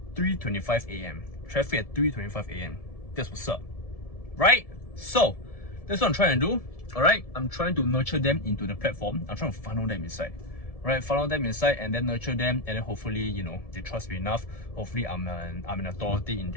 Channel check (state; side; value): late; right; 1.7 ms